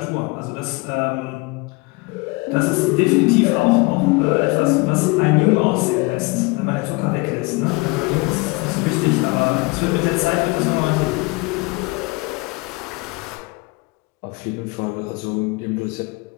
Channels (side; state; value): right; quieter; 25.6 dB